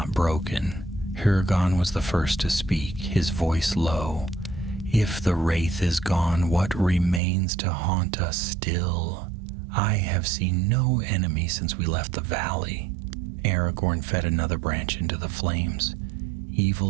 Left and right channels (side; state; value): left; drops out; at 7.2 s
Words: broken. Hurgon was the first to speak, his voice low. If the wraith is gone, what remains to haunt us still? I have seen no enemy since we left the valley. Aragorn fed another branch into the flames.